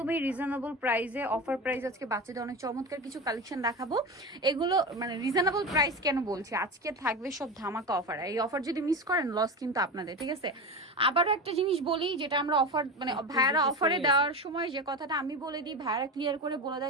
রিজনেবল প্রাইসে, অফার প্রাইস। আজকে বাচ্চাদের অনেক চমৎকার কিছু কালেকশন দেখাবো। এগুলো মানে রিজনেবল প্রাইস কেন বলছি, আজকে থাকবে সব ধামাকা অফার। এই অফার যদি মিস করেন লস কিন্তু আপনাদের, ঠিক আছে? আবারও একটা জিনিস বলি, যেটা আমরা অফার মানে ভাইয়ারা অফারে দেওয়ার সময় যে কথাটা আমি বলে দিই, ভাইয়ারা ক্লিয়ার করে বলে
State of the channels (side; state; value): both; normal; correlation 0.24